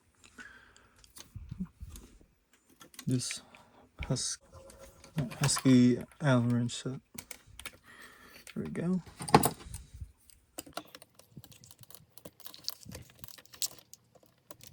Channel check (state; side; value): identical; both; correlation 1.00